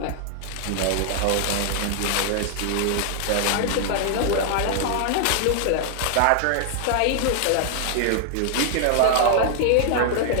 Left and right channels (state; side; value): different; both; correlation -0.01